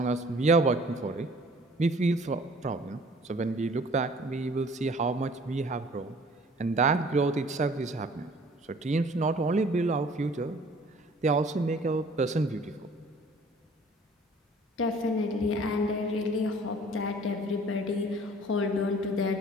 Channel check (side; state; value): both; normal; correlation 0.52